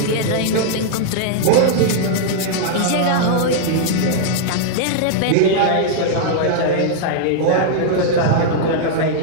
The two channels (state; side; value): different; both; correlation -0.01